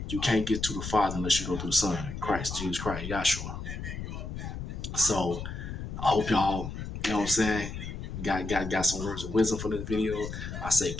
you can't get to the Father unless you go through the Son, Christ, Jesus Christ, Yahshua. So I hope y'all, you know what I'm saying, got some words of wisdom for this video. I say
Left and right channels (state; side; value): noise; left; rumble, 7 dB below the sound